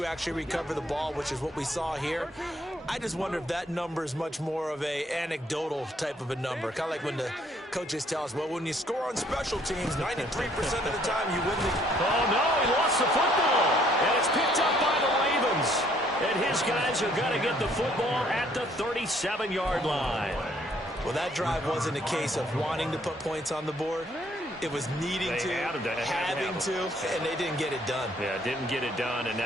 actually recover the ball, which is what we saw here. I just wonder if that number is much more of a anecdotal type of a number, kind of like when Coaches tell us, well, when you score on special teams, 93% of the time you win the... Oh, no, he lost the football. And it's picked up by the Ravens. And his guys are going to get the football at the 37-yard line. Well, that drive wasn't a case of wanting to put points on the board. It was needing to, having to, and they didn't get it done. Yeah, didn't get it done, and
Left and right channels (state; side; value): normal; both; correlation 0.64